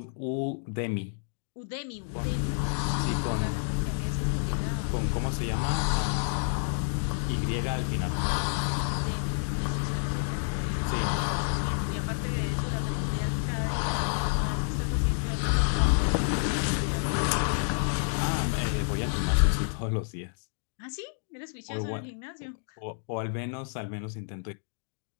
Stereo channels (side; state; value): right; silent; digital silence